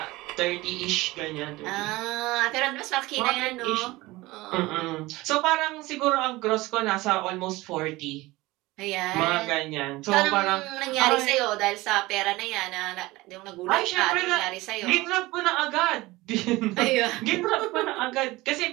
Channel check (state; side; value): quieter; left; 20.0 dB